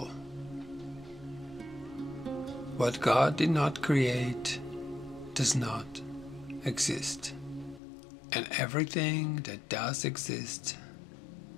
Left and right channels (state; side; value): drops out; right; at 7.8 s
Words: What God did not create does not exist, and everything that does exist